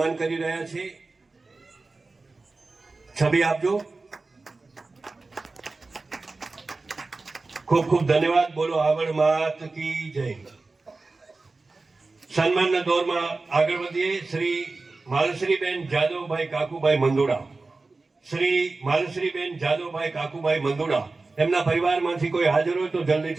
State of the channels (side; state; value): left; quieter; 3.6 dB